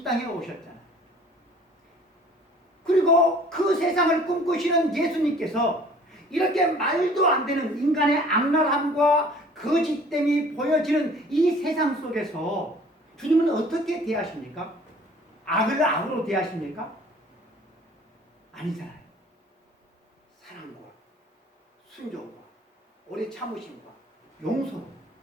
땅에 오셨잖아요. 그리고 그 세상을 꿈꾸시는 예수님께서 이렇게 말도 안 되는 인간의 악랄함과 거짓됨이 보여지는 이 세상 속에서 주님은 어떻게 대하십니까? 악을 악으로 대하십니까? 아니잖아요. 사랑과 순종과 오래 참으심과 용서로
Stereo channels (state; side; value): normal; both; correlation 0.51